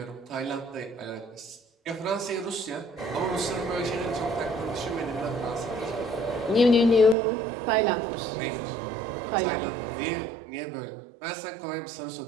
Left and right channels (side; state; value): left; drops out; at 7.2 s